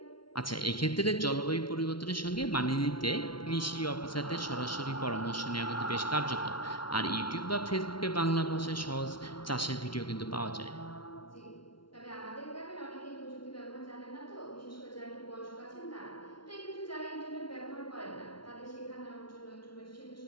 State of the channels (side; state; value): right; late; 0.73 ms